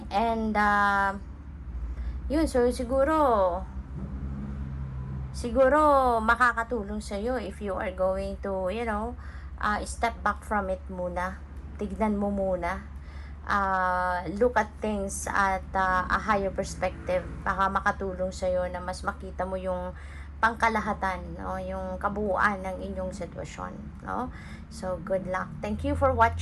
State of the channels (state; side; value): identical; both; correlation 1.00